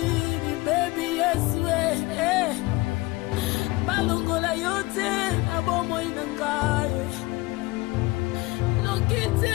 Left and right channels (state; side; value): quieter; right; 21.8 dB